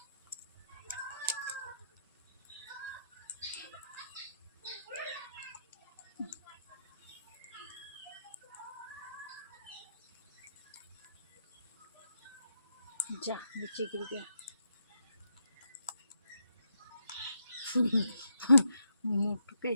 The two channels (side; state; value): both; inverted; correlation -0.79